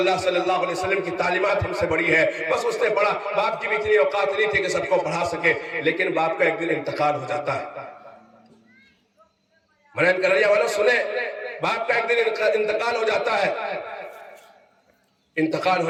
صلی اللہ علیہ وسلم کی تعلیمات ہم سے بڑی ہے۔ بس اس نے پڑھا، باپ کی بھی اتنی اوقات نہیں تھی کہ سب کو پڑھا سکے، لیکن باپ کا ایک دن انتقال ہو جاتا ہے۔ منعین کریا والوں سنیں، باپ کا ایک دن انتقال ہو جاتا ہے۔ انتقال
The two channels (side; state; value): both; identical; correlation 1.00